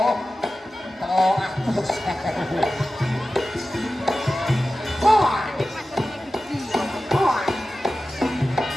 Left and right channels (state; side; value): normal; both; correlation 0.94